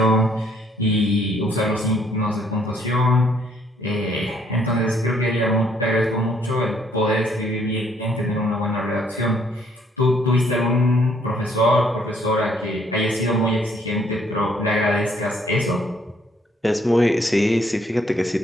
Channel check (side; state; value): both; normal; correlation 0.66